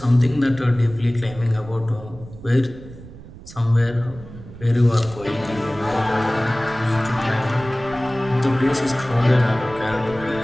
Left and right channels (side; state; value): right; noise; rumble, 17 dB below the sound